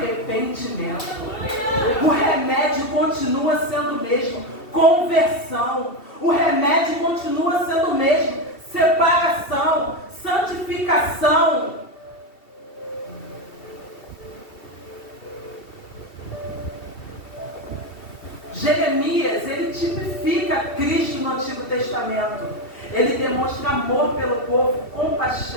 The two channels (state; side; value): late; right; 2.7 ms